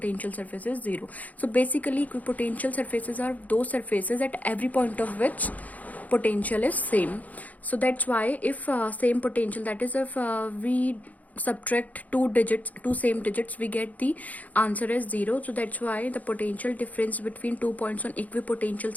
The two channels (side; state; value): right; late; 0.076 ms